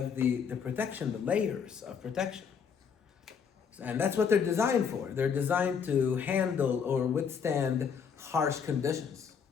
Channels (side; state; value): right; quieter; 6.7 dB